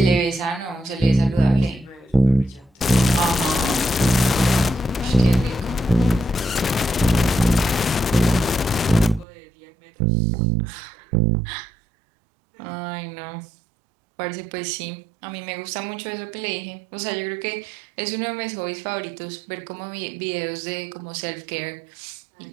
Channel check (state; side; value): drops out; left; at 9.2 s